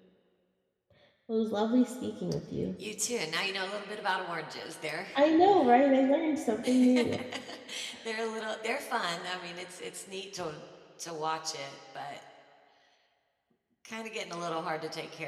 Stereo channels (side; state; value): both; identical; correlation 1.00